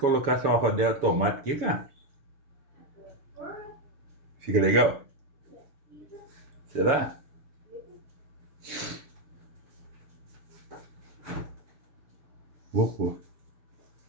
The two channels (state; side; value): late; left; 7.0 ms